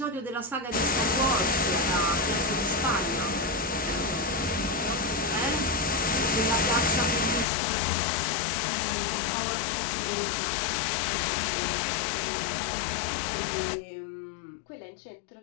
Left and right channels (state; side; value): drops out; right; at 7.5 s